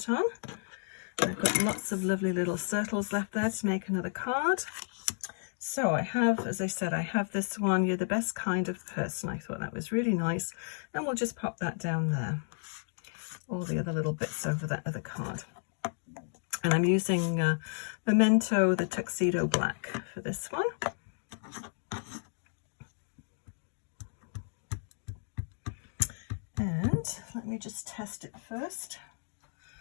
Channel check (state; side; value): silent; right; digital silence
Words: on. I've got lots of lovely little circles left there to make another card. So I have, as I said, I have this one, "You're the best kind of person." I thought that was really nice. And we'll just pop that down there. All the other little bits over that other card. And I'm using Memento, the Tuxedo Black for this one. And let me just test it first.